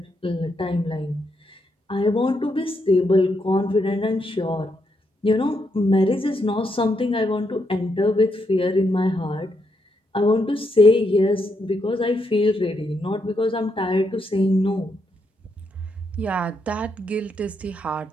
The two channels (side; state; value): both; normal; correlation 0.79